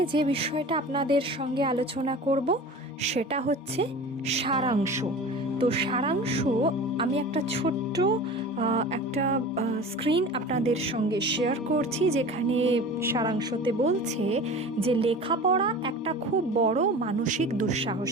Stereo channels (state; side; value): normal; both; correlation 0.37